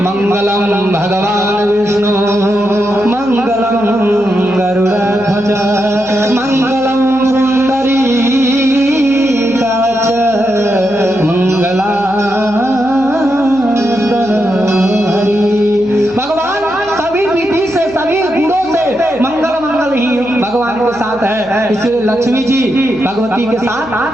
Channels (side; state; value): left; noise; hum, 23 dB below the sound